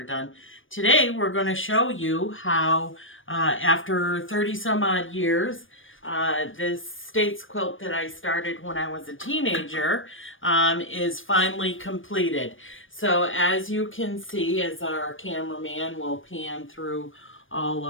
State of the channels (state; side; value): late; right; 0.58 ms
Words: done. Today, we're going to show you how, after 30 some odd years, this States quilt that I started when I was a teenager is finally completed. So as you can see, as our cameraman will pan through all